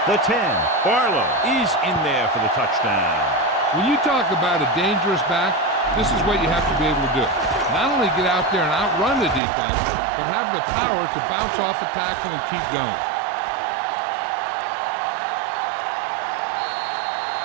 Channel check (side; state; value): left; drops out; at 9.4 s